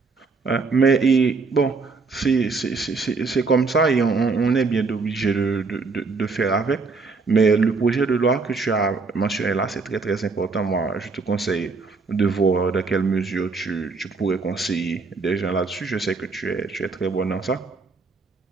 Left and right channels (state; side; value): quieter; left; 4.2 dB